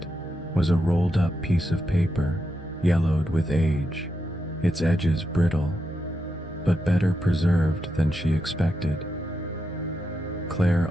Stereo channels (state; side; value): normal; both; correlation 0.85